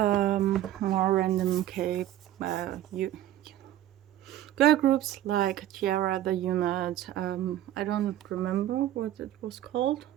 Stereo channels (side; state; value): left; quieter; 12.8 dB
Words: random girl groups like t-ara, the unit. I don't remember what it was called,